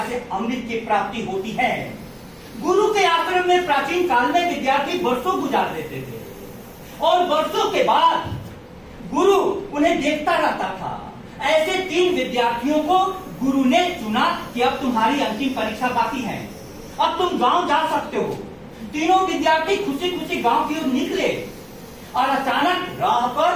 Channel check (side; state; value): both; identical; correlation 1.00